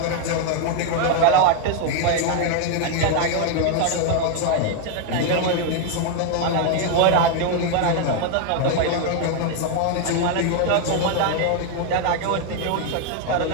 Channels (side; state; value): both; different; correlation 0.01